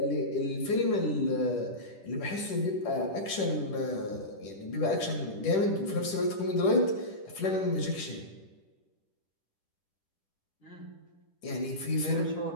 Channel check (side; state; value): right; late; 10 ms